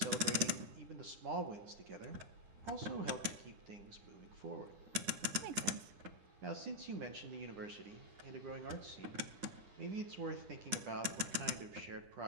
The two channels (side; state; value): left; late; 9.6 ms